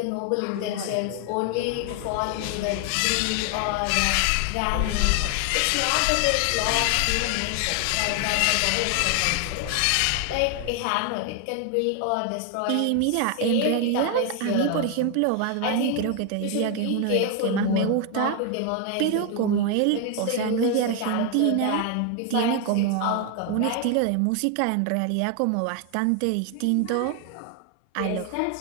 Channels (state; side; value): different; both; correlation 0.00